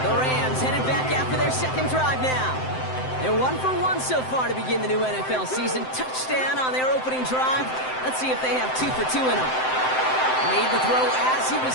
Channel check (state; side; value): late; right; 7.8 ms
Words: The Rams headed back after their second drive now. They're 1 for 1 so far to begin the new NFL season. Touchdown on their opening drive. Let's see if they have 2 for 2 in them. Made the throw as he was